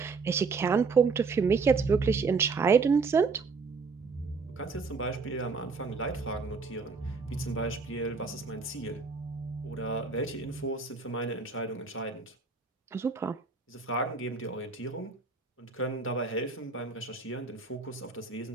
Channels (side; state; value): left; quieter; 4.6 dB